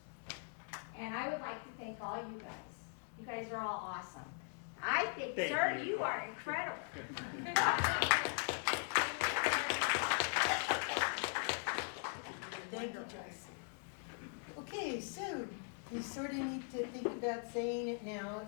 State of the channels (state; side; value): silent; right; 51 dB below the other